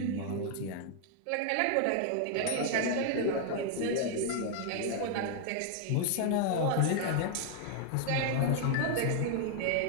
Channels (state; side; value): different; both; correlation 0.00